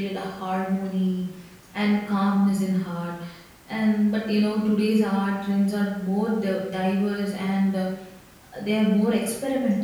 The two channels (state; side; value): identical; both; correlation 1.00